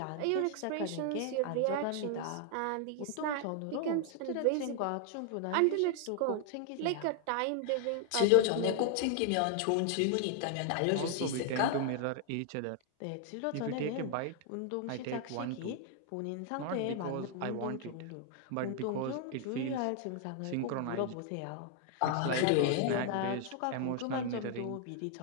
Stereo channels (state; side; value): different; both; correlation 0.00